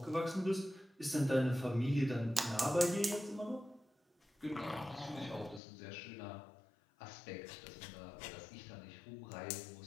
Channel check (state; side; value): drops out; right; at 5.6 s